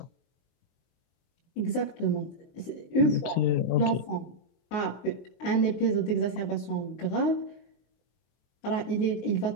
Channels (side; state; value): right; late; 23 ms